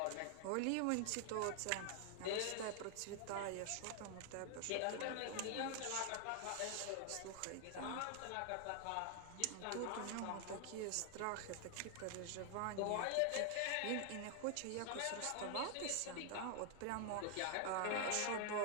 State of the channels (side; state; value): both; different; correlation 0.00